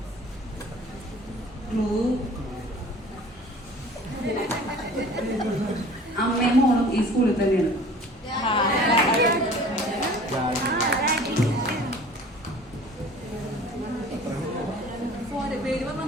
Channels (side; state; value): both; normal; correlation 0.46